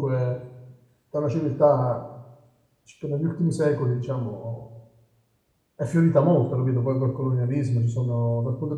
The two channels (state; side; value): identical; both; correlation 1.00